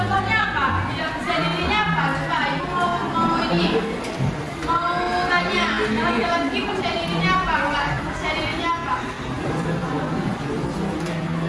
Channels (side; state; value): both; identical; correlation 1.00